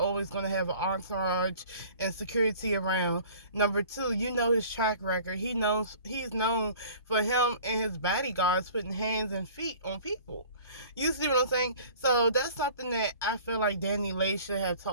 going to have an entourage and security around. Number two, his track record. He's known for him and his bodyguards putting hands and feet on people. You see what I'm saying? So that's something that I feel like DANI LEIGH should have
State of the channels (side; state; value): both; inverted; correlation -0.47